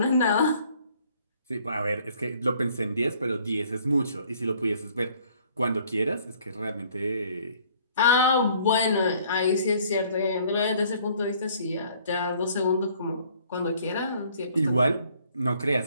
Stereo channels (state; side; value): inverted; both; correlation -0.59